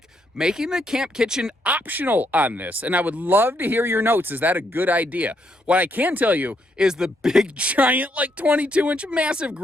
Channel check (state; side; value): normal; both; correlation 0.75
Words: making the camp kitchen optional on this. And I would love to hear your notes. Is that a good idea? What I can tell you is the big, giant, like 22-inch massive